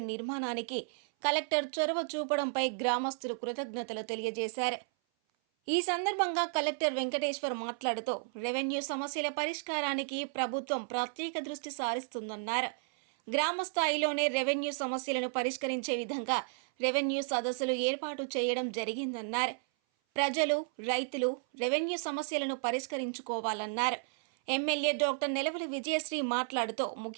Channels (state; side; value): silent; left; 56 dB below the other